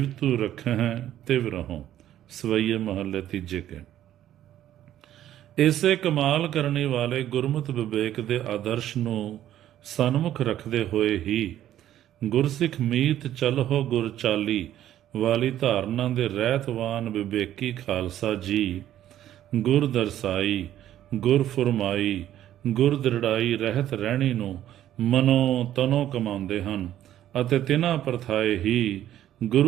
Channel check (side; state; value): left; quieter; 12.1 dB